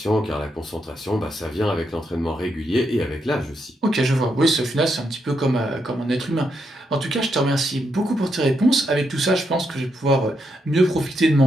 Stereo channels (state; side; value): normal; both; correlation 0.81